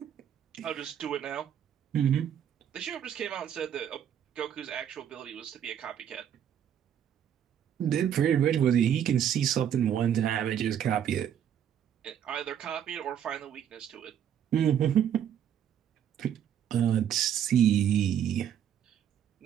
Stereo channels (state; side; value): quieter; left; 9.5 dB